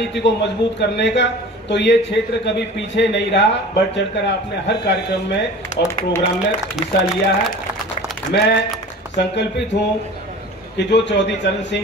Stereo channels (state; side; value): normal; both; correlation 0.40